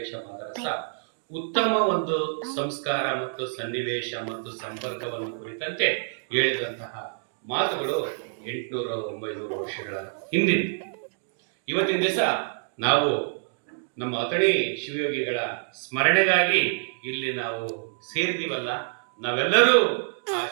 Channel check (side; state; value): left; silent; digital silence